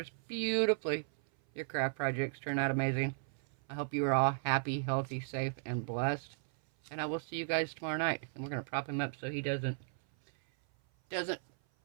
beautifully. Your craft projects turn out amazing. I hope you are all happy, healthy, safe, and blessed. And I will see you guys tomorrow night. And we're going to prop him up so he doesn't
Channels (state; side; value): silent; left; 54 dB below the other